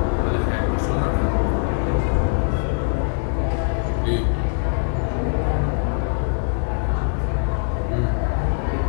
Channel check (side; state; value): right; silent; 62 dB below the other